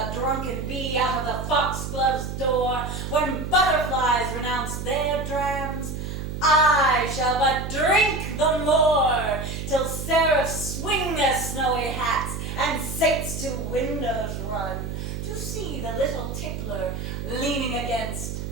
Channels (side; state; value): right; noise; hum, 6 dB below the sound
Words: drunken bee out of the foxglove's door, when butterflies renounce their drams, I shall but drink the more, till seraphs swing their snowy hats, and saints to windows run, to see the little tickler leaning against